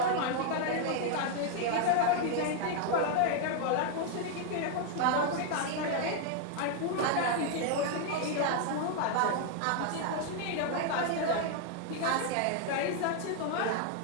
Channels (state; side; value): different; both; correlation 0.00